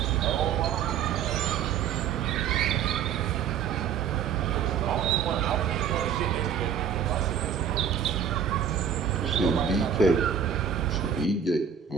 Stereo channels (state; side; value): quieter; left; 7.9 dB